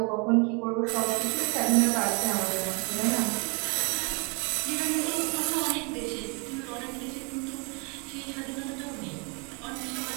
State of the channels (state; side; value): quieter; left; 33.4 dB